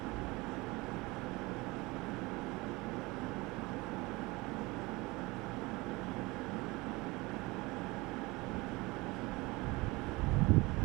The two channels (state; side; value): quieter; left; 23.0 dB